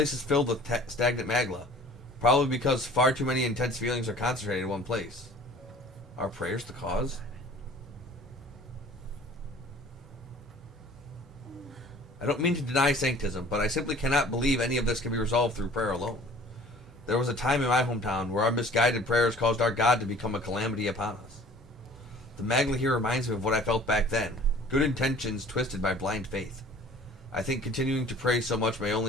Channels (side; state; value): both; normal; correlation 0.48